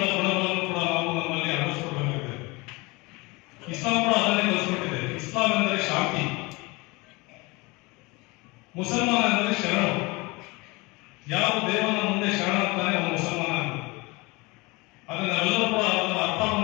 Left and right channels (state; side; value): quieter; right; 24.8 dB